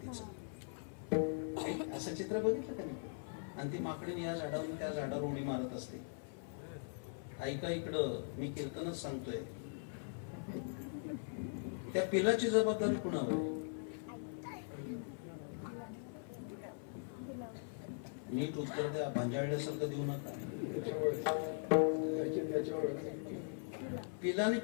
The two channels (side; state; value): right; silent; 51 dB below the other